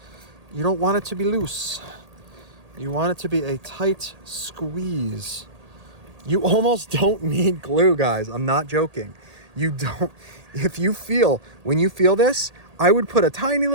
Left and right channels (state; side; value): late; left; 1.8 ms